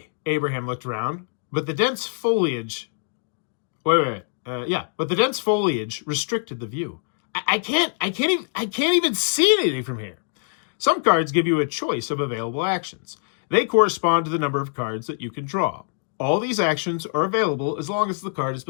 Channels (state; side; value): silent; right; digital silence